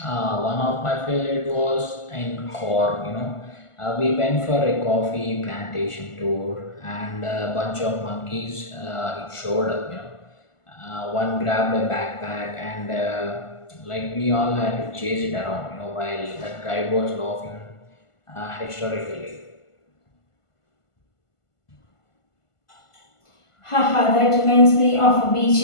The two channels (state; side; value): late; right; 1.5 ms